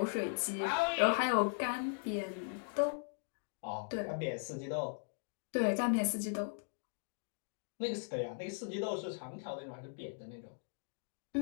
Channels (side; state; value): right; silent; digital silence